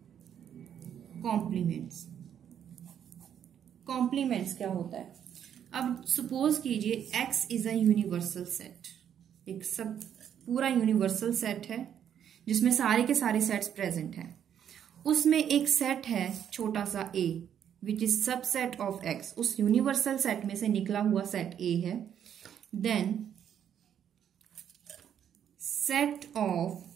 कॉम्प्लीमेंट्स। कॉम्प्लीमेंट्स क्या होता है? अब सपोज कीजिए x is a universal set, एक सब पूरा यूनिवर्सल सेट है जिसमें सारे के सारे सेट्स प्रेजेंट हैं। उसमें एक सेट है छोटा सा a which is subset of x, उस यूनिवर्सल सेट में से निकला हुआ सेट a है। Then set of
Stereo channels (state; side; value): quieter; left; 9.2 dB